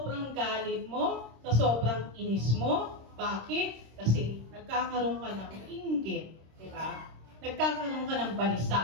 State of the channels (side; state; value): left; late; 26 ms